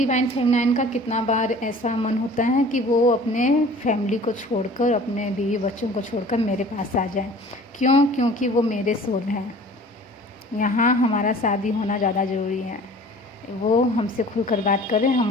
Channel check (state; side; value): normal; both; correlation 0.46